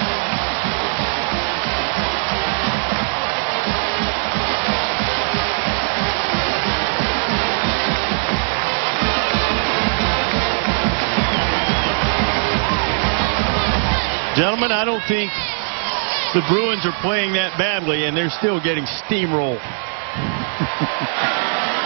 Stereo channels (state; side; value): silent; left; 66 dB below the other